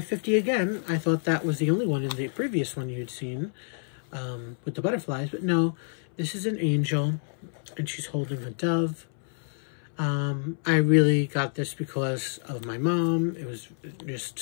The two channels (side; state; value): right; silent; 59 dB below the other